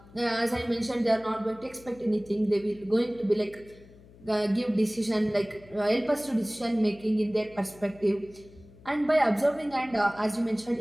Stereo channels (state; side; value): noise; left; hum, 23 dB below the sound